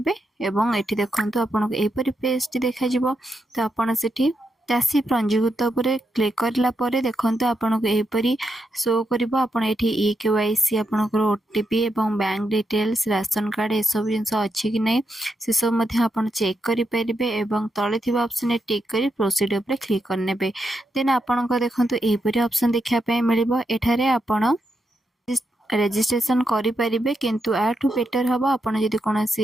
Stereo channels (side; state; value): both; normal; correlation 0.83